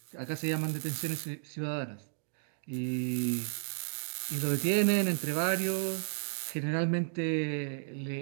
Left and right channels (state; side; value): silent; left; digital silence